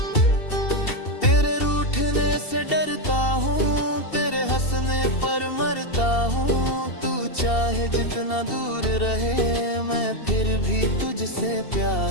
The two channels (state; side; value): late; right; 2.7 ms